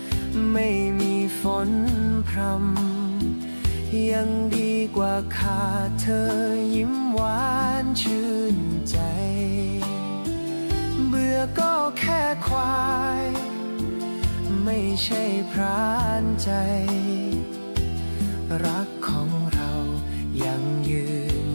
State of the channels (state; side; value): inverted; both; correlation -1.00